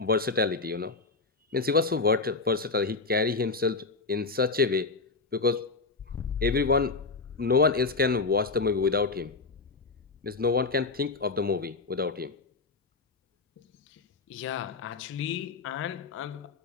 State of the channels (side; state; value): right; quieter; 4.1 dB